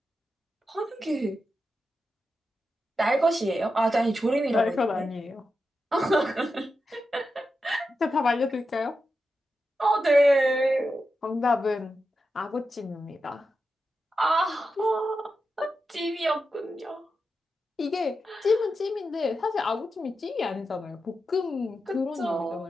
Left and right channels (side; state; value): both; normal; correlation 0.89